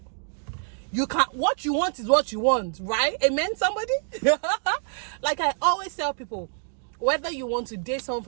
You can't, what you want is what you want, right? Amen, somebody? Like I always tell people, whether you want to date someone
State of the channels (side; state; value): left; silent; digital silence